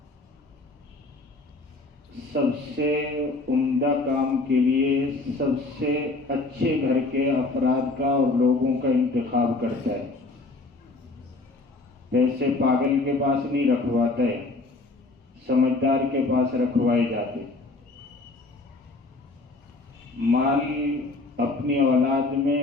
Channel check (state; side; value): quieter; right; 3.3 dB